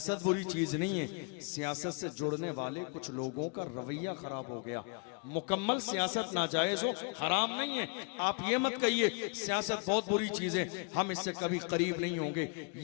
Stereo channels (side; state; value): right; quieter; 33.9 dB